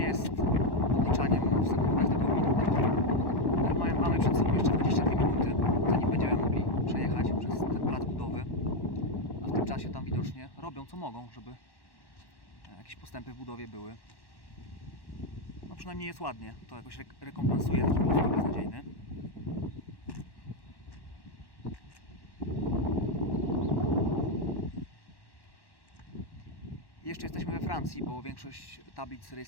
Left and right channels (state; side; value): late; right; 1.1 ms